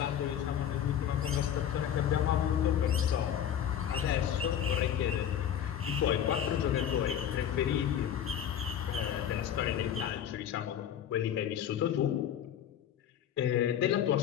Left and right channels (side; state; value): right; quieter; 9.6 dB